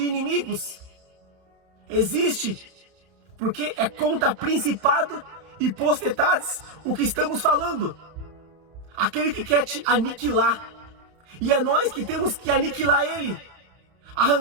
inimigos, existe, porque é contra principado e potestades o que estamos falando. Aquele que quer te aniquilar, e é nós que temos que aniquilar ele,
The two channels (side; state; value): left; late; 31 ms